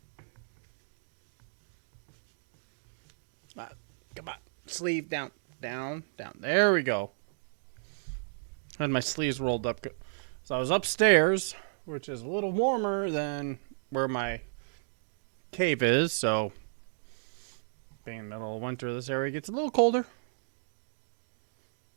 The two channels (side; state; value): left; silent; digital silence